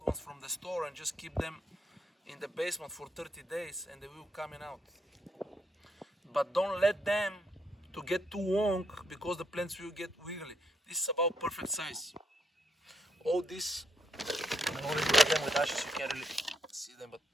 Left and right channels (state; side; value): normal; both; correlation 0.76